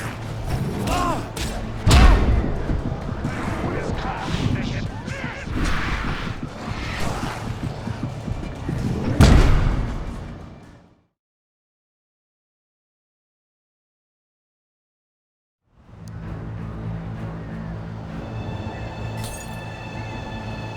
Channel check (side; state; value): both; identical; correlation 1.00